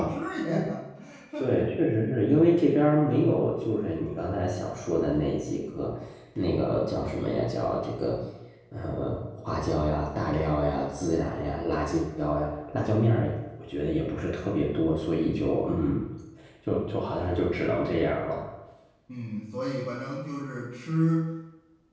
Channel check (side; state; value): both; identical; correlation 1.00